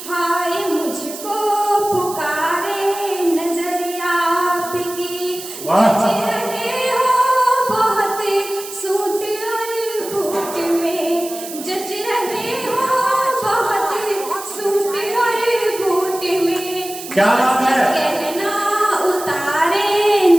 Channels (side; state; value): right; noise; hiss, 11 dB below the sound